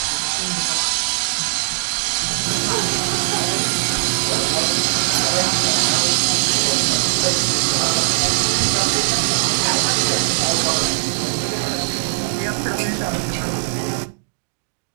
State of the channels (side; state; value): left; silent; digital silence